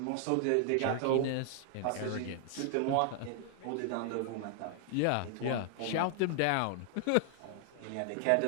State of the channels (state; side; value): different; both; correlation 0.00